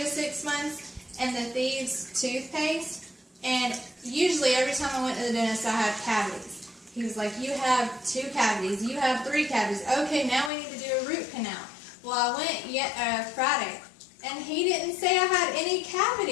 6 months, and the Thieves toothpaste. And usually every time I went to the dentist, I had cavities. He was like, you have 2 cavities, you have 3 cavities. Okay, now we need to do a root canal. Well, I went Friday, and he didn't say I had any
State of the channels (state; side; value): drops out; right; at 10.5 s